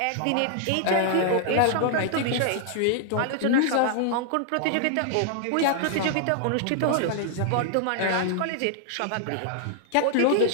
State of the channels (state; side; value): different; both; correlation -0.01